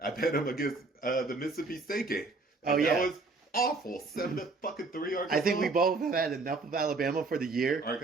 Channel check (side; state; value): left; quieter; 3.7 dB